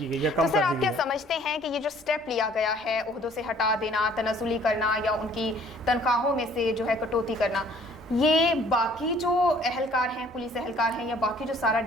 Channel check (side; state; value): both; normal; correlation 0.57